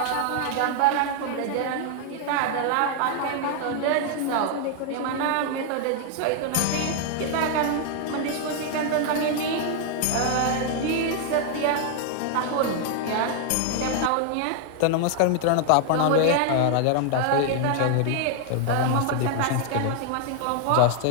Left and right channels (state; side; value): different; both; correlation 0.00